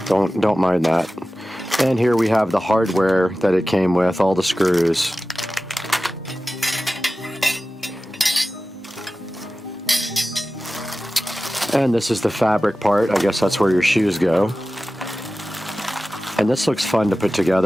Don't mind that. And here we have the hardware that it came with, all the screws. And this is the fabric part. I guess that's where your shoes go. And this looks fun to put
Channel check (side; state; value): both; normal; correlation 0.95